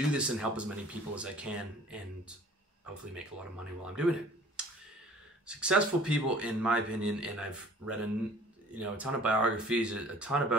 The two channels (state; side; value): normal; both; correlation 0.49